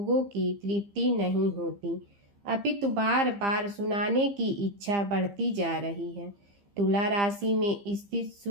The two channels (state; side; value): late; left; 15 ms